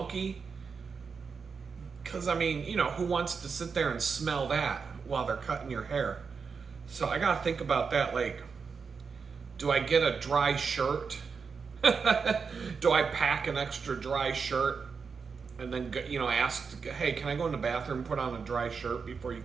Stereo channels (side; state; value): left; quieter; 5.5 dB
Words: Because, who wants to sit there and smell that while they're cutting your hair? So I got to think about that. Like, do I get a dry shirt? Do I pack an extra dry shirt and then, ask, hey, can I go in the bathroom and put on a dry shirt before you